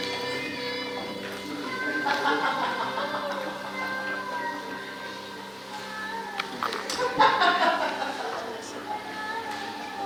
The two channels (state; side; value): identical; both; correlation 1.00